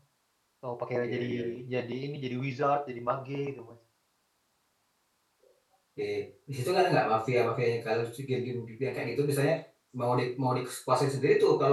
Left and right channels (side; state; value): both; identical; correlation 1.00